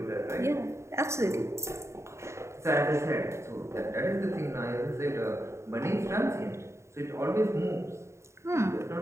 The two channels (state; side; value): late; left; 0.14 ms